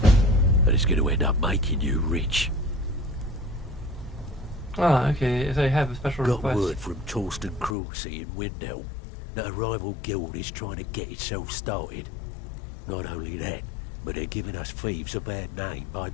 And it's going to end up making you rich. Ah, okay. So I have a special Got request. word from Torsten Cruelseat in Windhelm that a rival guild is trying to get itself started. Not only that, but they're giving us thieves a bad name by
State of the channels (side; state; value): right; drops out; at 7.8 s